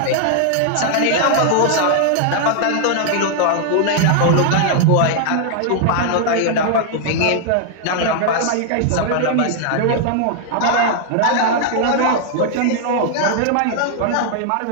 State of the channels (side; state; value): both; different; correlation -0.01